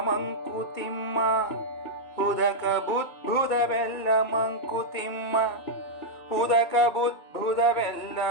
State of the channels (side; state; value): right; late; 2.2 ms